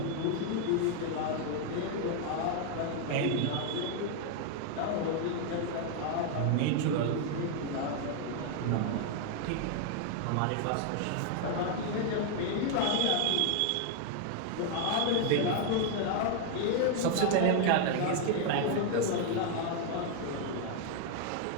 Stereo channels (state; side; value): different; both; correlation 0.00